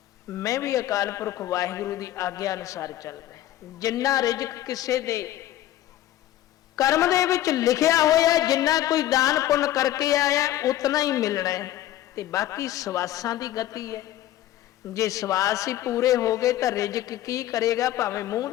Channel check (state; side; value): quieter; right; 13.7 dB